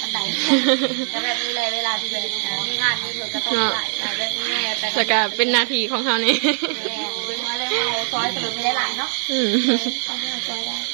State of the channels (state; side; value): silent; left; 64 dB below the other